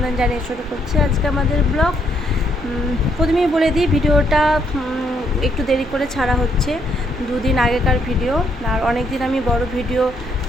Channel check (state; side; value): normal; both; correlation 0.72